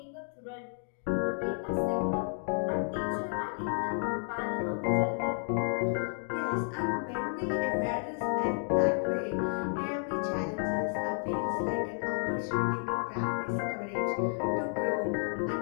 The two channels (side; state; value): right; silent; 55 dB below the other